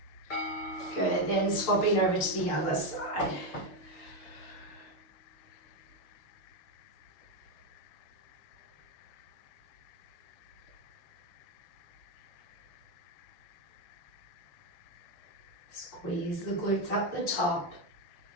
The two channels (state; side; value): late; right; 6.6 ms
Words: Good, then swapping over to the other side. Squeeze the glutes up the top.